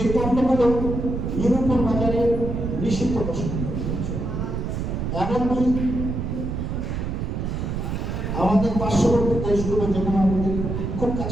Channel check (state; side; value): noise; right; rumble, 3 dB below the sound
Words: এই পণ্যগুলো ইউরোপের বাজারে নিষিদ্ধ ঘোষণা করা হয়েছে। এমনকি আমাদের পার্শ্ববর্তী দেশগুলো যেমন আমাদের খুব